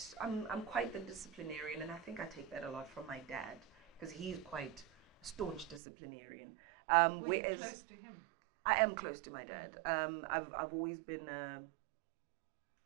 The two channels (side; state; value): left; drops out; at 5.8 s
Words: the disciplinarian, and I think I take that a lot from my dad because he's quite a staunch disciplinarian. Were you close to him? I am close to my dad. I've always been